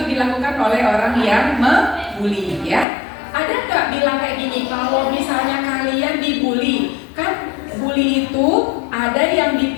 dilakukan oleh orang yang membuli ya. Ada nggak bilang kayak gini, kalau misalnya kalian dibully, kan bully itu ada yang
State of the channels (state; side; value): drops out; right; at 2.9 s